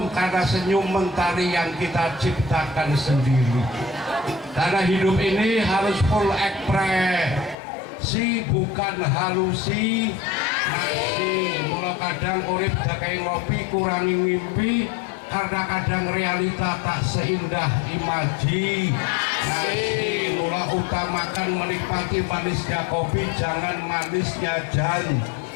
karena senyum mentari yang kita ciptakan sendiri. Karena hidup ini harus full ekspresi, bukan halusi. Mula kadang urip dakai ngopi, kurangi mimpi. Karena kadang realita tak seindah imaji. Mula utamakan menikmati manisnya kopi, jangan manisnya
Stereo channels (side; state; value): right; drops out; at 7.6 s